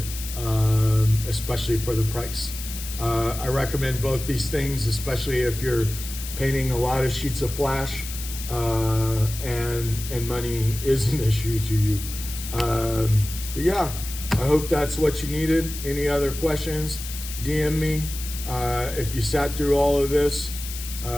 especially for the price. I recommend both these things, especially if you're painting a lot of sheets of flash and money is an issue to you. But yeah, I hope that's what you needed. Any other questions, DM me. If you sat through all of this,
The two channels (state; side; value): noise; left; hiss, 10 dB below the sound